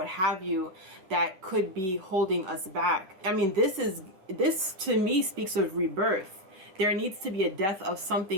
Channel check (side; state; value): left; late; 10 ms